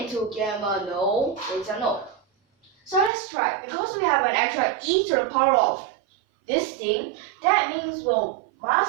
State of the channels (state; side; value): drops out; left; at 3.1 s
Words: into gamma? No, beta, no. So let's try. Because we have an extra e to the power of this thing, that means we